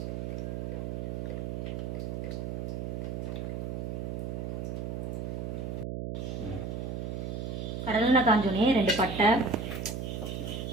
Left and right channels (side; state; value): right; noise; hum, 3 dB below the sound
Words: கடலெண்ணெய் காஞ்சோடனே 2 பட்டை,